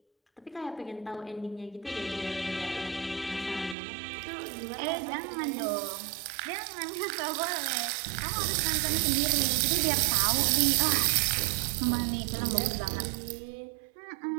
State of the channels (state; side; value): drops out; left; at 3.8 s